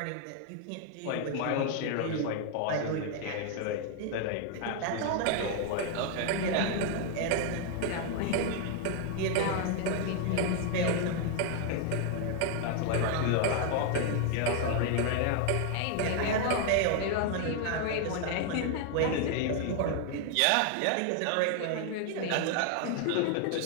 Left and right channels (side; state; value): both; different; correlation 0.00